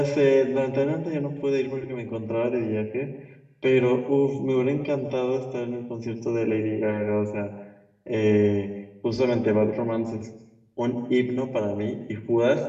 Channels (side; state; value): both; identical; correlation 1.00